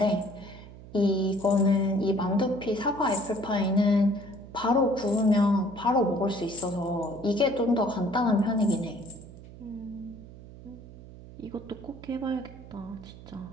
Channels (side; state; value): right; noise; hum, 17 dB below the sound